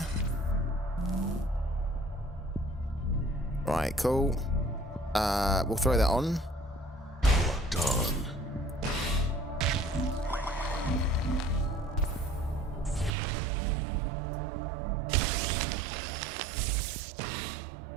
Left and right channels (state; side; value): drops out; left; at 13.1 s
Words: Right, cool. We'll throw that on. Done.